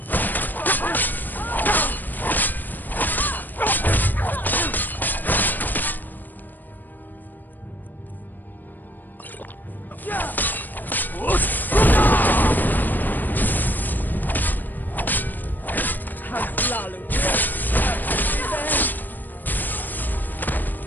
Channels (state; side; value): late; right; 0.089 ms